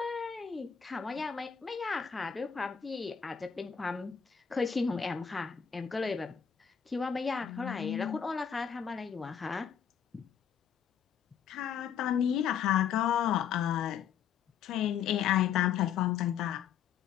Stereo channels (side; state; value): right; quieter; 7.9 dB